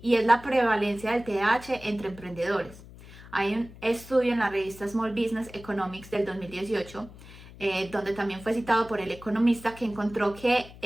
y es la prevalencia del TDAH entre emprendedores. Hay un estudio en la revista Small Business Economics del 2018, donde también fue citado por el economista, que encontró que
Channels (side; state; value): left; noise; hum, 18 dB below the sound